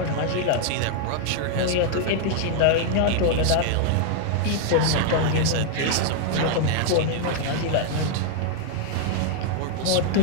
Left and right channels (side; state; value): both; different; correlation 0.00